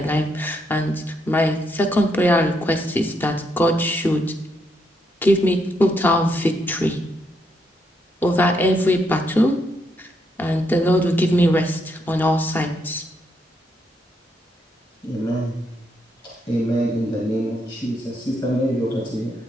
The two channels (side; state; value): both; normal; correlation 0.77